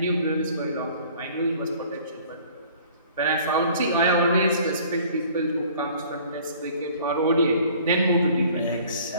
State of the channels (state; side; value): inverted; both; correlation -0.52